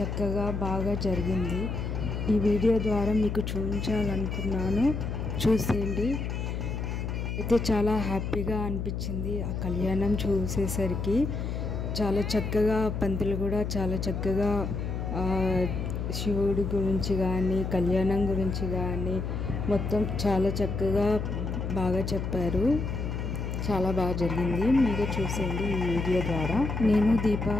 బాగా జరిగింది. ఈ వీడియో ద్వారా మీకు చూపించాలనుకున్నాను, చూసేయండి. అయితే చాలా హ్యాపీగా అనిపించింది ఆ కళ్యాణం చూసేసరికి. చాలా చక్కగా పంతులు కూడా చాలా చక్కగా శివుడి గురించి కానీ కళ్యాణం గురించి కానీ మొత్తం చాలా చక్కగా బాగా చెప్పారు. చాలా బాగా జరిగింది. మీరే చూసేయండి ఈ వీడియో ద్వారా. నేను దీప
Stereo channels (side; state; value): left; noise; hum, 3 dB below the sound